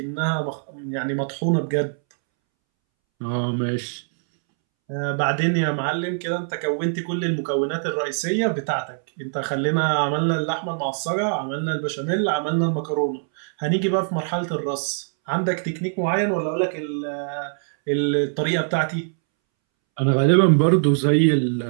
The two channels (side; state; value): left; silent; 64 dB below the other